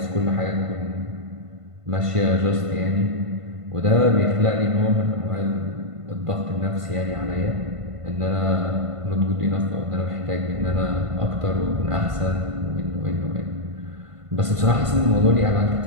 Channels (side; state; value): left; late; 1.5 ms